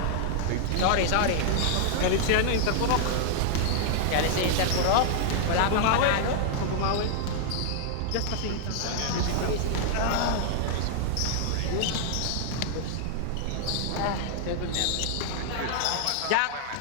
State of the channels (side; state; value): both; different; correlation -0.01